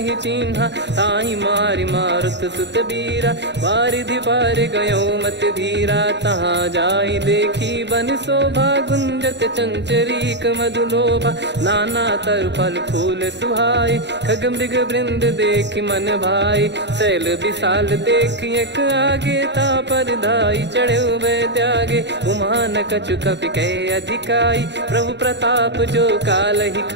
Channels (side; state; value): left; late; 0.51 ms